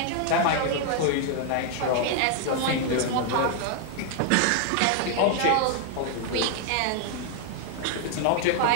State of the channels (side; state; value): both; different; correlation 0.00